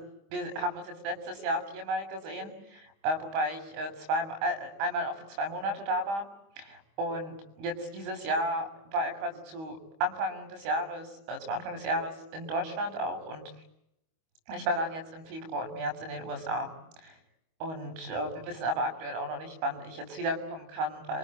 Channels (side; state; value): left; late; 25 ms